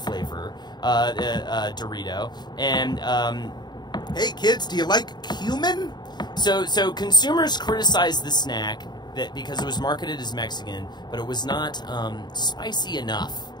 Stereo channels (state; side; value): late; right; 0.21 ms